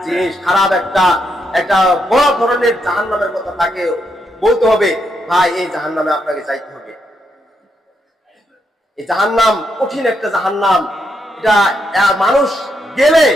জিনিস, খারাপ একটা বড় ধরনের জাহান্নামের কথা তাকে বলতে হবে, ভাই এই জাহান্নামে আপনাকে যাইতে হবে। এই জাহান্নাম কঠিন একটা জাহান্নাম। এটা মানুষ গেলে,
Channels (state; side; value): normal; both; correlation 0.80